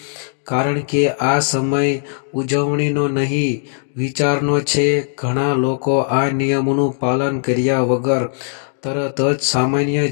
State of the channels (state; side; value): silent; right; 67 dB below the other